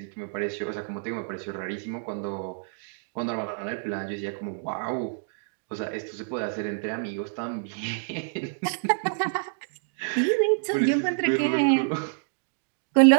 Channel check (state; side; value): silent; left; digital silence